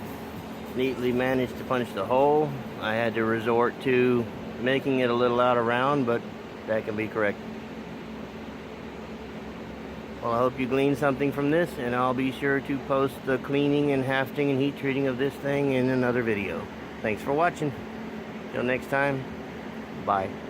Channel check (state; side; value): identical; both; correlation 1.00